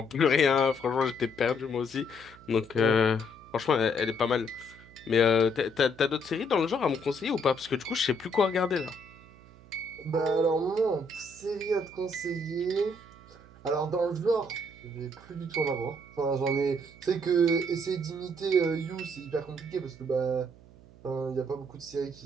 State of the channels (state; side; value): noise; right; hum, 23 dB below the sound